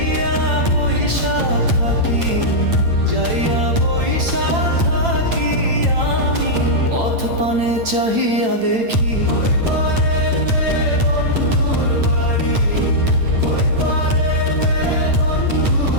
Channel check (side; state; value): left; late; 8.9 ms